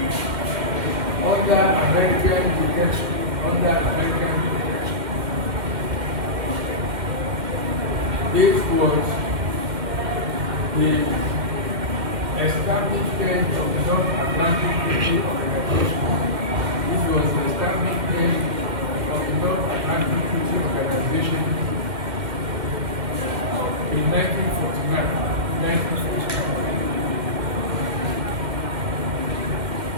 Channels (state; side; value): late; left; 1.9 ms